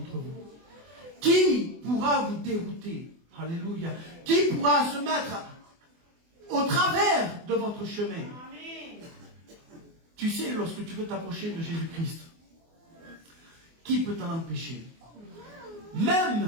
vous? Qui pourra vous dérouter? Alléluia. Qui pourra se mettre au travers de votre chemin? Tu sais, lorsque tu veux t'approcher de Jésus-Christ, qui peut t'en empêcher?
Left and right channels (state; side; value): late; left; 24 ms